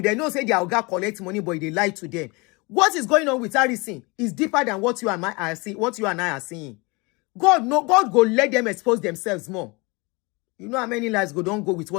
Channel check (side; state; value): right; quieter; 26.8 dB